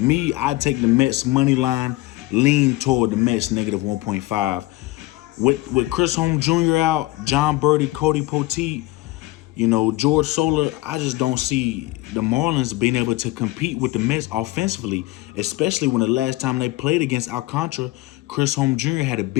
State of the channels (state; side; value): quieter; right; 19.4 dB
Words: I take the Mets money line, lean toward the Mets -1.5. With Chris Holm Jr. out, John Birdie, Cody Poteet, you know, George Soler, I just don't see the Marlins being able to compete with the Mets offensively, especially when the last time they played against Alcontra, Chris Holm Jr. had a